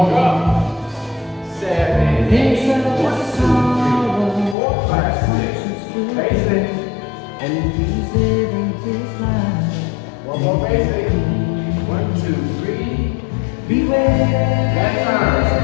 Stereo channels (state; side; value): drops out; right; at 4.5 s